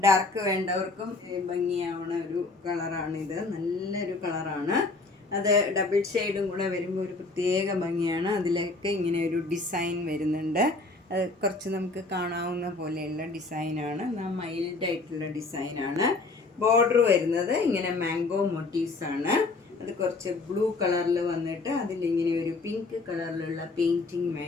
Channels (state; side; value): quieter; right; 3.6 dB